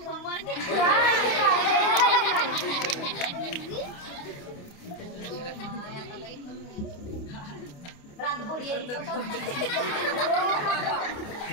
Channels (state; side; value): late; right; 29 ms